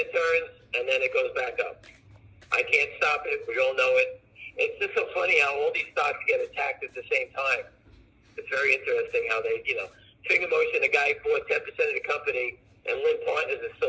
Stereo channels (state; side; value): identical; both; correlation 1.00